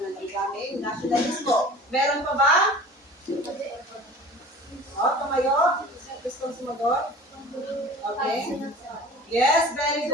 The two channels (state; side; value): normal; both; correlation 0.42